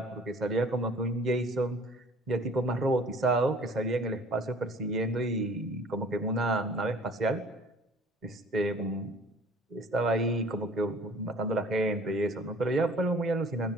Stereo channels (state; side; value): normal; both; correlation 0.50